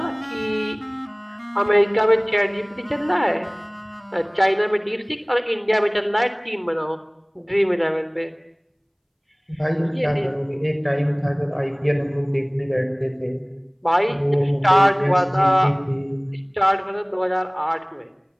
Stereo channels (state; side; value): identical; both; correlation 1.00